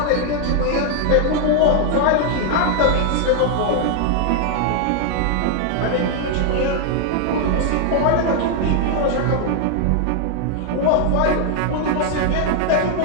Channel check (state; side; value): different; both; correlation 0.00